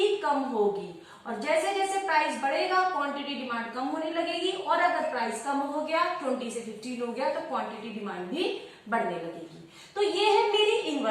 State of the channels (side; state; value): both; identical; correlation 1.00